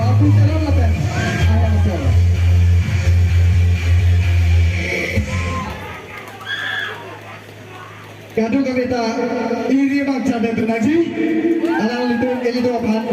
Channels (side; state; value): both; identical; correlation 1.00